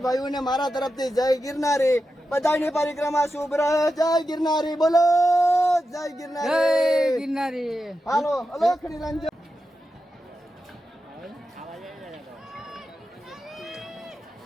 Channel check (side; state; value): both; normal; correlation 0.90